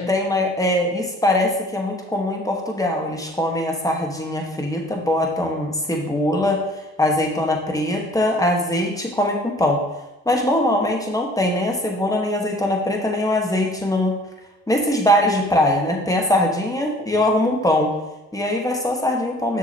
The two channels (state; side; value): normal; both; correlation 0.53